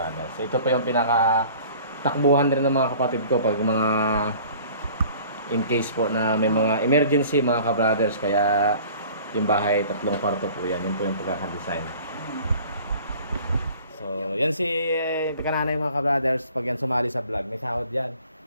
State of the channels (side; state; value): both; inverted; correlation -0.48